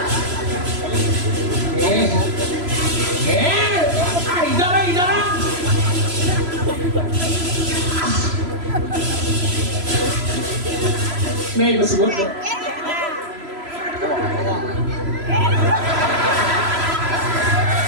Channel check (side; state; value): left; late; 3.0 ms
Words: Idara. Nih bersebut. Nah,